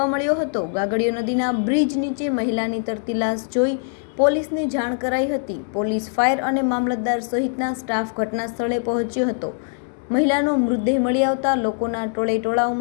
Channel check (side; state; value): right; silent; 64 dB below the other